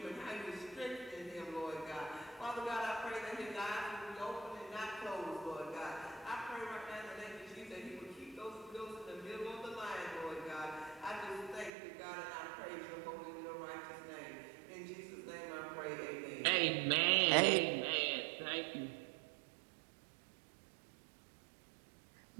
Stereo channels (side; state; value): left; drops out; at 11.7 s